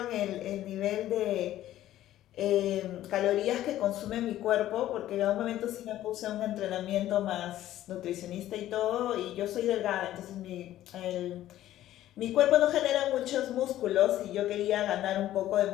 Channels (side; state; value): right; quieter; 13.5 dB